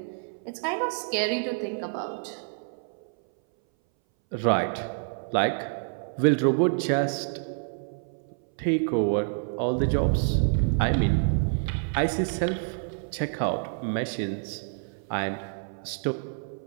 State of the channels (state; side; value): silent; left; 60 dB below the other